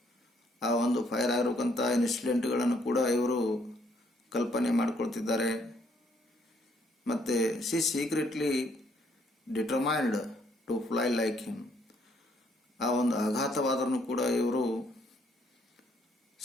ಆ ಒಂದು fire ಆಗಿರುವಂಥ ಇನ್ಸಿಡೆಂಟ್ಗಳನ್ನು ಕೂಡ ಇವರು ಕಲ್ಪನೆ ಮಾಡಿಕೊಳ್ತಿದ್ದಾರೆ. ಮತ್ತು she secretly determined to fly like him. ಆ ಒಂದು ಆಘಾತವಾದರೂ ಕೂಡ ಇವರು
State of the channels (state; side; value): normal; both; correlation 0.68